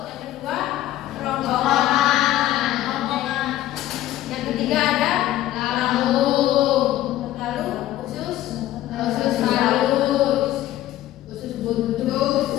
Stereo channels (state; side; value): quieter; right; 14.1 dB